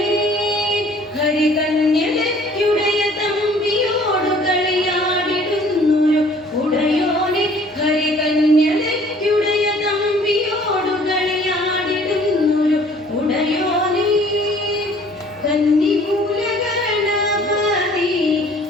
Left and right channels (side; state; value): both; normal; correlation 0.55